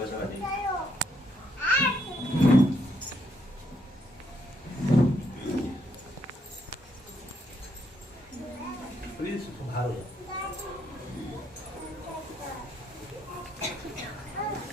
सर, आ जाइए। प्लीज सुधार हो जाओ।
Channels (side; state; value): both; normal; correlation 0.74